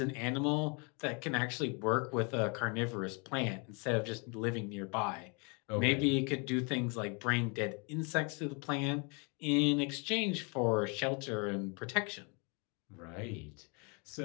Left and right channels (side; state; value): right; quieter; 33.2 dB